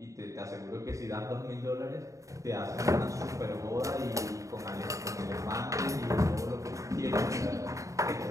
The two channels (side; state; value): left; late; 0.16 ms